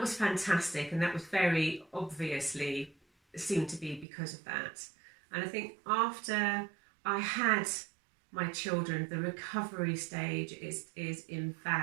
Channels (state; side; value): drops out; left; at 4.0 s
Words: was fantastic, and that was very obviously seemed to be because of that. And I think after I had my children, the recovery stage is